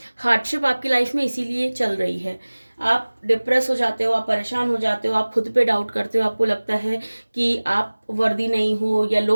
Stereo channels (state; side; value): inverted; both; correlation -1.00